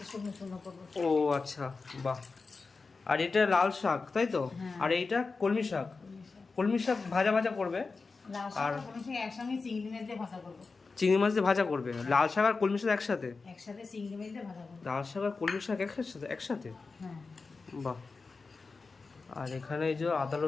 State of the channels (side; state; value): right; quieter; 4.2 dB